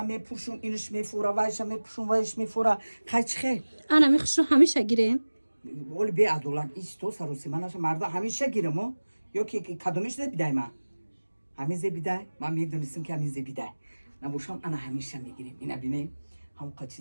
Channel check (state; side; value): inverted; both; correlation -1.00